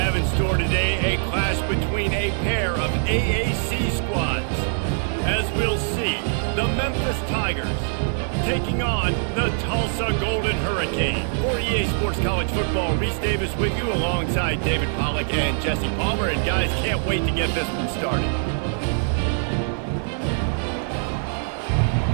in store today, a clash between a pair of AAC squads. As we'll see, the Memphis Tigers taking on the Tulsa Golden Hurricane. For EA Sports College Football, Reese Davis with you alongside David Pollack and Jesse Palmer. And guys, can't wait to get this one started.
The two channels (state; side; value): silent; left; 63 dB below the other